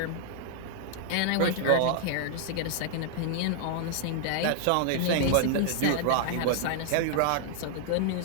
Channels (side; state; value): both; different; correlation -0.01